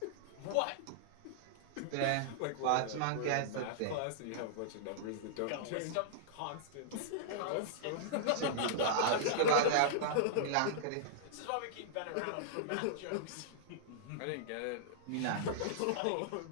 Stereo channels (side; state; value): both; different; correlation -0.02